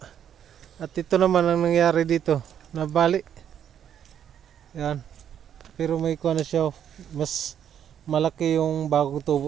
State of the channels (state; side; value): quieter; left; 9.3 dB